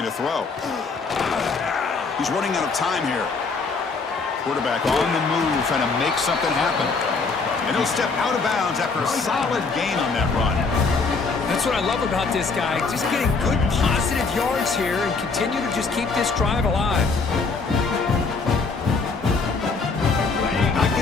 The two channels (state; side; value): quieter; right; 4.4 dB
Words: to throw. He's running out of time here. Quarterback on the move, trying to make something happen. And he'll step out of bounds after a solid gain on that run. That's what I love about this guy. Just getting good, positive yards here and continue to just keep this drive alive. Not